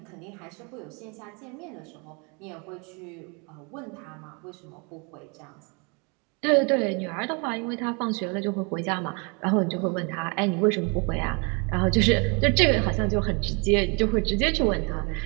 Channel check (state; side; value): quieter; left; 32.4 dB